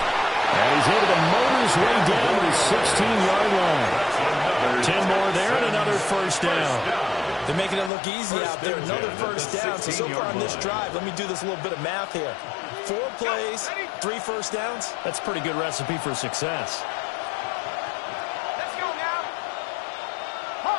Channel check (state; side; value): drops out; right; at 7.9 s